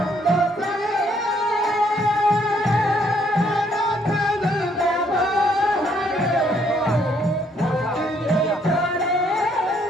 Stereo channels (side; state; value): both; normal; correlation 0.68